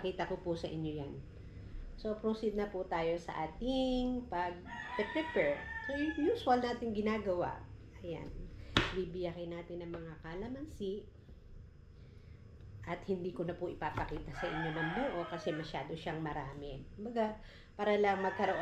ko po sa inyo yan. So, proceed na po tayo sa ating pag-prepare. So, yung usual natin ginagawa. Ayan. bibiyakin natin ng mga kalamansi. At hindi ko na po ipapakita sa inyo ng buo kasi masyado siyang marami. Kumbaga, para lang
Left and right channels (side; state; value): both; identical; correlation 1.00